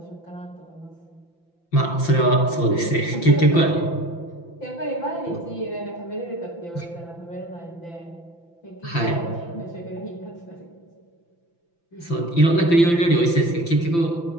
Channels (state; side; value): late; right; 5.9 ms